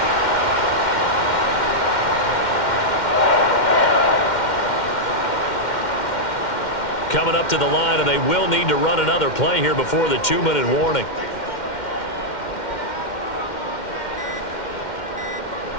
Coming up to the line, and they will need to run another play here before the 2-minute warning.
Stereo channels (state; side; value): late; right; 2.1 ms